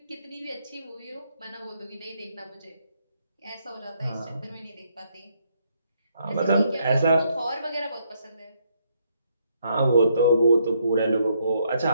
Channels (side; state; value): both; inverted; correlation -0.73